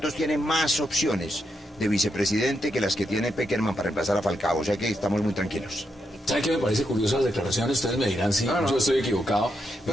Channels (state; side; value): normal; both; correlation 0.82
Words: tiene más opciones de vicepresidente que las que tiene Peckerman para reemplazar a Falcao, o sea que estamos muy tranquilos. ¿Sabe qué me parece curioso las declaraciones? Ustedes me dirán si yo estoy equivocado.